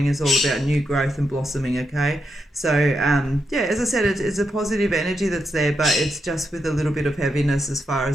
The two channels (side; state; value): both; normal; correlation 0.84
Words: is all about new growth and blossoming, okay? So, yeah, as I said, it's a positive energy that's there, but it's just with a little bit of heaviness as far